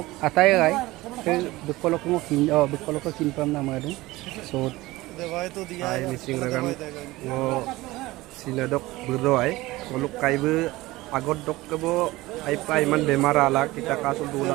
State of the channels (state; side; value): quieter; left; 19.3 dB